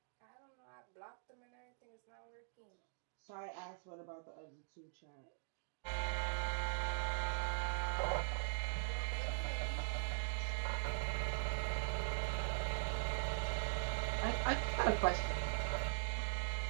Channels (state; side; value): silent; left; digital silence